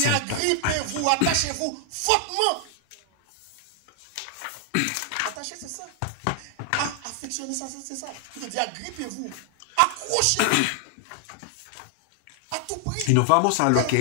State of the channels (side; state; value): both; different; correlation 0.00